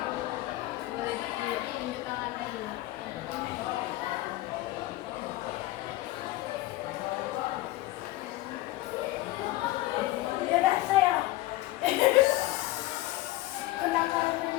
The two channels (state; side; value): quieter; right; 17.4 dB